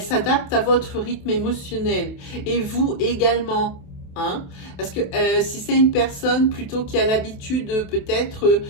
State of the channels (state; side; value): late; right; 28 ms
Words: s'adapte à votre rythme émotionnel. Et vous également. Hein? Parce que si c'est une personne plutôt qui a l'habitude peut-être